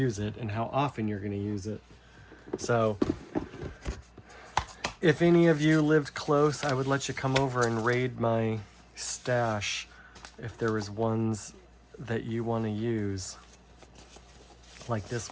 it, and how often you're going to use it. So if any of you lived close, I would let you come over and raid my stash if there was ones that you want to use, like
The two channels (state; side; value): identical; both; correlation 1.00